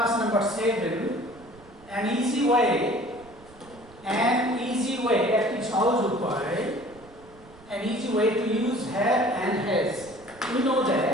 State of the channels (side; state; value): right; noise; rumble, 24 dB below the sound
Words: number 7, an easy way at its house an easy way to use have and has. We know